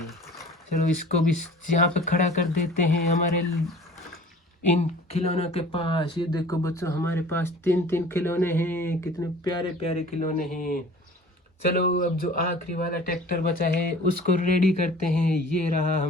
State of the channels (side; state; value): both; normal; correlation 0.46